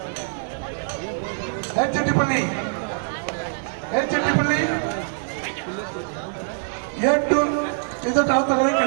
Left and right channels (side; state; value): left; silent; digital silence